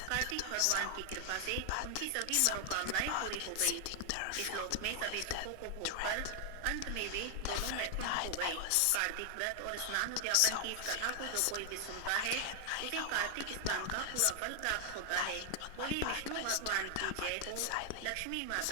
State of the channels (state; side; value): different; both; correlation 0.00